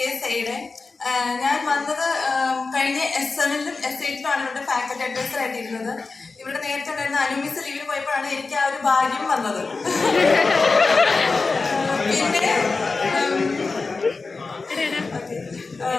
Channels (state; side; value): quieter; right; 4.1 dB